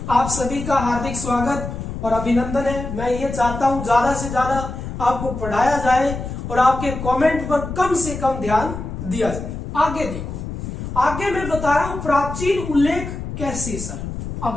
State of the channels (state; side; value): noise; left; rumble, 7 dB below the sound